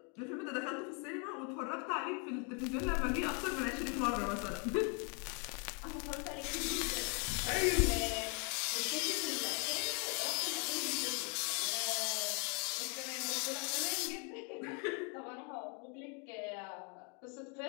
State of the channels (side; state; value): right; quieter; 36.5 dB